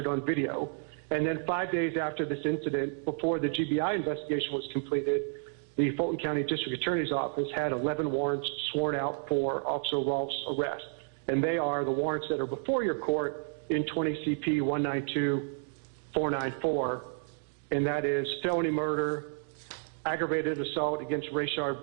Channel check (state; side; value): silent; left; 57 dB below the other